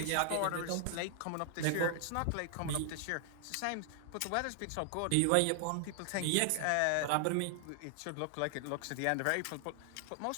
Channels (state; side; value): different; both; correlation 0.00